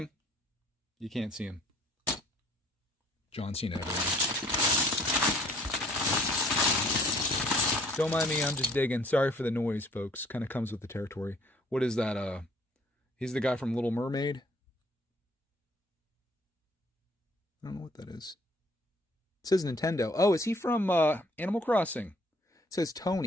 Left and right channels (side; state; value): both; normal; correlation 0.59